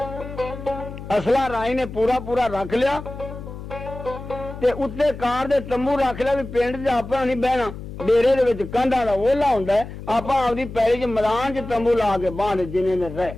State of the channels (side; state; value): left; noise; hum, 11 dB below the sound